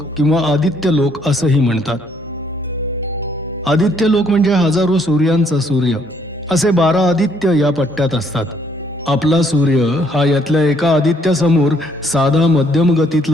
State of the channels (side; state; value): both; normal; correlation 0.66